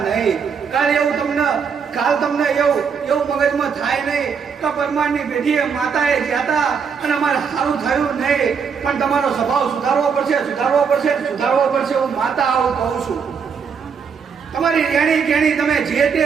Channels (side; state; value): left; quieter; 6.3 dB